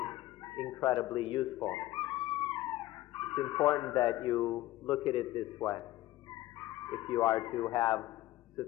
incredibly useful. It's important that you look at it this way if you are to have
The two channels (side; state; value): right; quieter; 16.2 dB